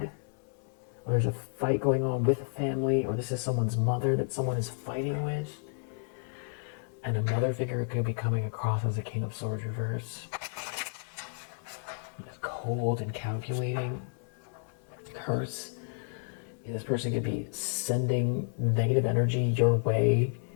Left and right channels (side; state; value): right; silent; digital silence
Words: Or there's a fight going on with a family, or this is someone's mother that someone is fighting with. And a mother figure could be coming across as a King of Swords reverse. Cold and calculating. Curse. This person could be sending negative energy your way